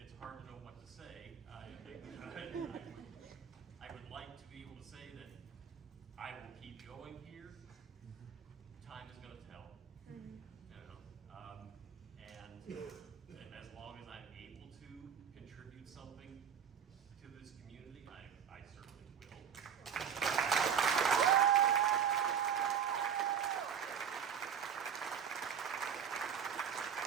hard to know what to say. I would like to be able to say that I will keep going here. Time is going to tell. You know, and as long as I'm able to contribute something to this community, I certainly will.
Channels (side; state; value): left; quieter; 8.0 dB